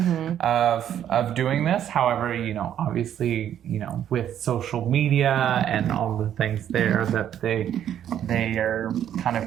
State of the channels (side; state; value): left; quieter; 10.2 dB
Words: of doing this. However, obviously, with social media and all the things there, that they are kind